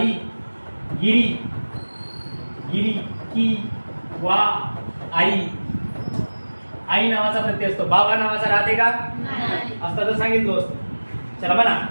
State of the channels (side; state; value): both; inverted; correlation -1.00